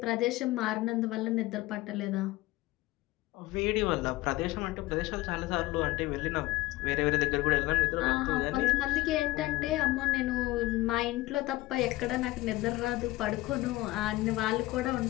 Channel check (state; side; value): quieter; right; 18.8 dB